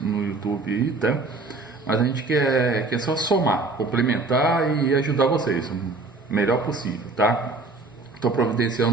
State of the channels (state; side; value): quieter; left; 3.5 dB